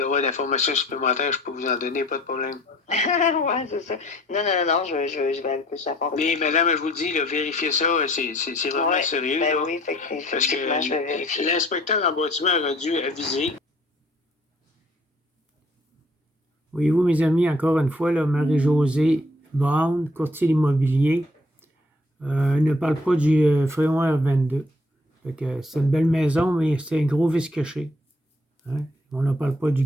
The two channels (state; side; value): normal; both; correlation 0.59